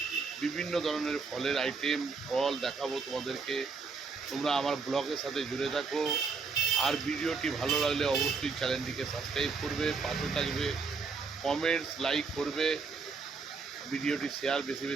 বিভিন্ন ধরনের ফলের আইটেম ফল দেখাবো তোমাদেরকে। তোমরা আমার ব্লগের সাথে জুড়ে থাকো। আর ভিডিওটি ভালো লাগলে অবশ্যই চ্যানেলটিকে সাবস্ক্রাইব করবে, পাশে থাকবে, কমেন্টস লাইক করবে, ভিডিওটি শেয়ার বেশি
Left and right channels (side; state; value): left; quieter; 4.7 dB